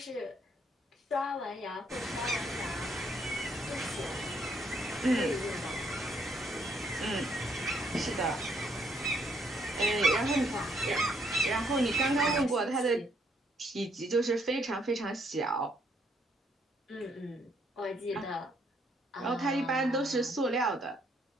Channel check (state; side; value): normal; both; correlation 0.70